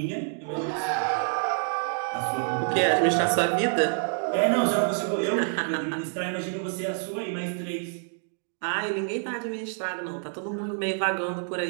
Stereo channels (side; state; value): left; silent; 60 dB below the other